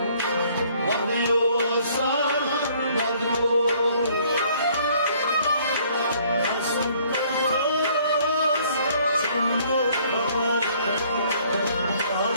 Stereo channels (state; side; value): inverted; both; correlation -0.61